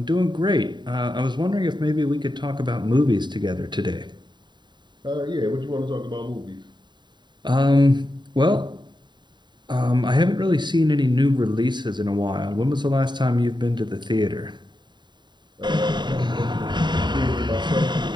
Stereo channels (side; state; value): left; late; 0.22 ms